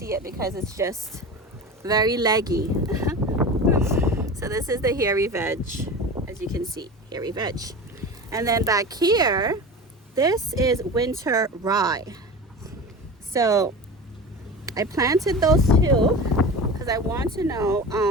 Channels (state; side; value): normal; both; correlation 0.31